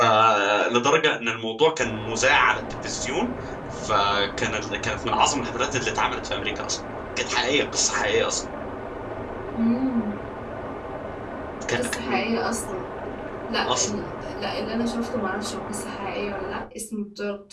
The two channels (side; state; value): both; identical; correlation 1.00